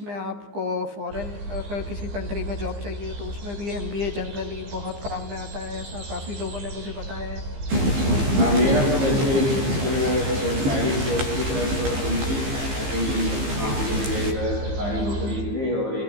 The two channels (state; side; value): late; left; 15 ms